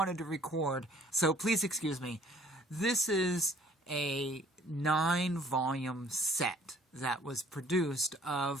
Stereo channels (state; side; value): normal; both; correlation 0.57